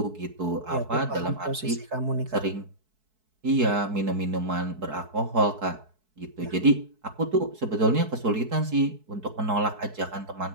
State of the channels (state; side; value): late; left; 4.6 ms